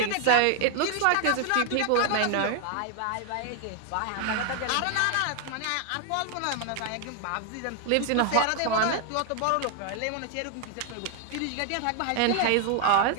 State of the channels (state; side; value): different; both; correlation 0.00